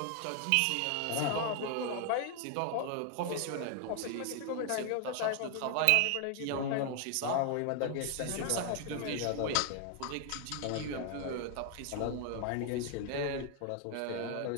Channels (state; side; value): different; both; correlation 0.00